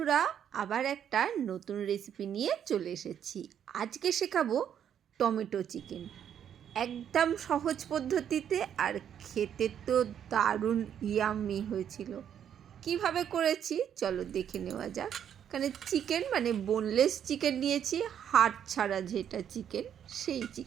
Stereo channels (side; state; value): left; quieter; 9.1 dB